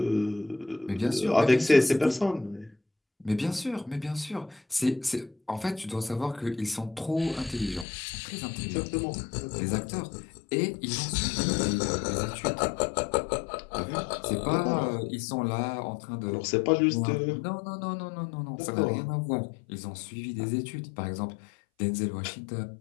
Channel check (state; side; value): drops out; right; at 7.9 s